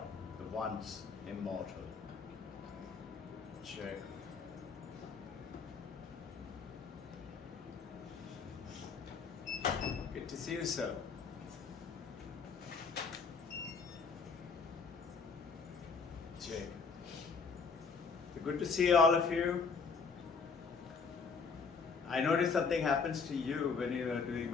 the ones immortal. Check. Good to see you, sir. Check. Good to see all of you. I noticed something happens to you when you are doing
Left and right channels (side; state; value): right; quieter; 5.2 dB